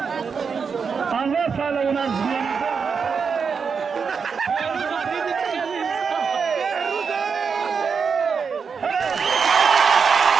آنها پهلوان از میانده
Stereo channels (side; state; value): left; quieter; 5.8 dB